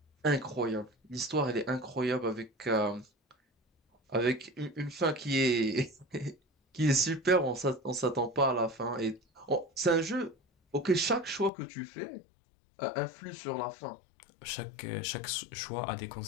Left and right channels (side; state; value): right; drops out; at 11.5 s